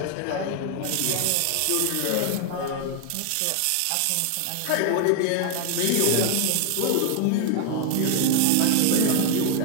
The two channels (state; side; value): different; both; correlation 0.00